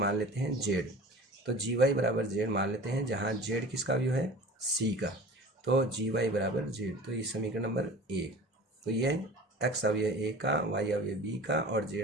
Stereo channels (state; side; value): normal; both; correlation 0.40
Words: लेते हैं जेड, तो जी वाई बराबर जेड मान लेते हैं, जहाँ जेड किसका अवयव है, सी का, तो जी वाई बराबर जेड। तो ये समीकरण नंबर 1। तो ये एक्स अवयव ए का, वाई अवयव बी का और